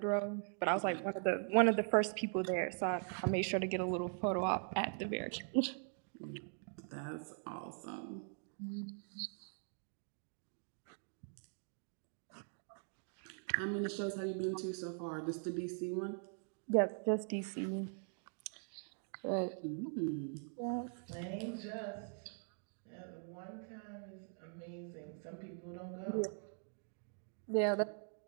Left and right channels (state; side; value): silent; left; 50 dB below the other